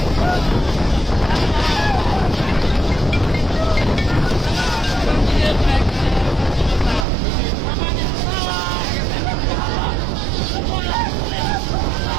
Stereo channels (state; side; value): drops out; left; at 7.1 s